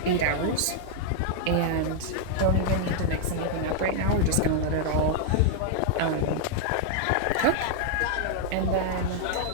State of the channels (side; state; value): both; different; correlation -0.01